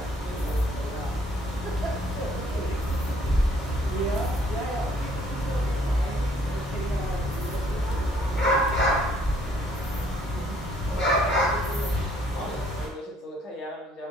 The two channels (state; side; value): normal; both; correlation 0.63